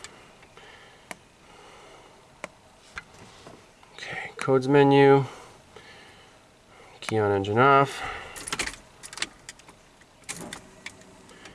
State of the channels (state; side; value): identical; both; correlation 1.00